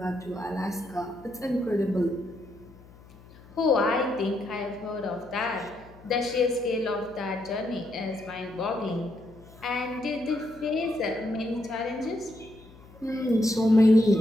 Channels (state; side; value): noise; left; hum, 22 dB below the sound